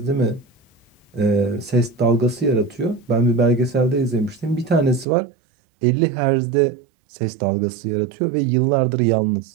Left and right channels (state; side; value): drops out; left; at 5.1 s